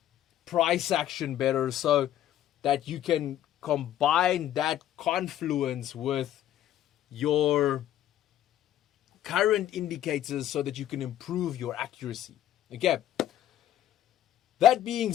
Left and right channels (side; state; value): right; quieter; 11.9 dB